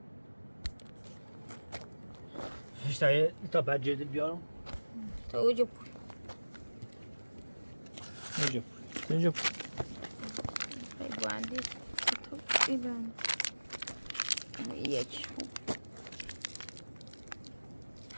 هیچ تا بعد جدید بیارم تا اوجا پول اینجا پوی خیلی باندی تو ایدن یک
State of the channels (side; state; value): both; inverted; correlation -1.00